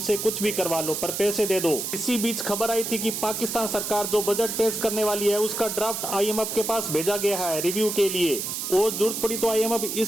कुछ भी करवा लो, पर पैसे दे दो। इसी बीच खबर आई थी कि पाकिस्तान सरकार जो बजट पेश करने वाली है उसका ड्राफ्ट आईएमएफ के पास भेजा गया है रिव्यू के लिए, और जरूरत पड़ी तो आईएमएफ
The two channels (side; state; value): right; noise; hiss, 4 dB below the sound